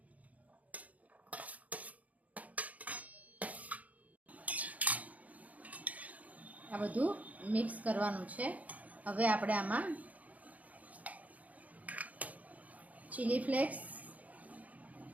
આ બધું મિક્સ કરવાનું છે। હવે આપણે આમાં ચીલી ફ્લેક્સ,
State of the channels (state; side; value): late; left; 0.073 ms